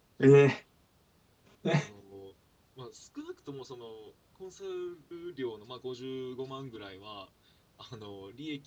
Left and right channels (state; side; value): identical; both; correlation 1.00